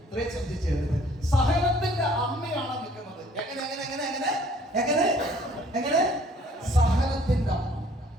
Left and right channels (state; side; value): normal; both; correlation 0.58